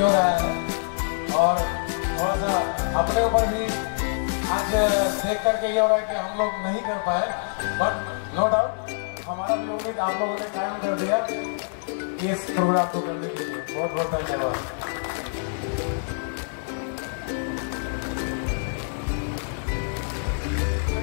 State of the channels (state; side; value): silent; right; digital silence